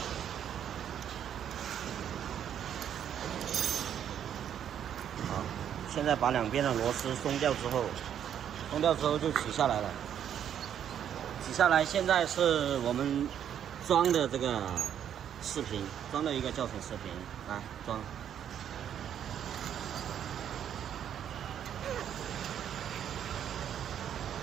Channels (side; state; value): left; quieter; 9.4 dB